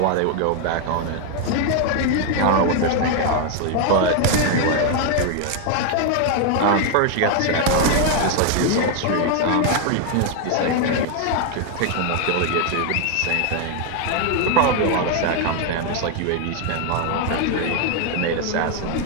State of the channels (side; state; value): both; different; correlation 0.00